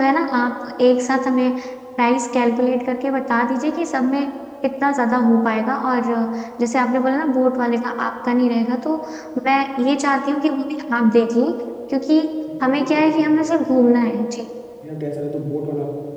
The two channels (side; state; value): both; identical; correlation 1.00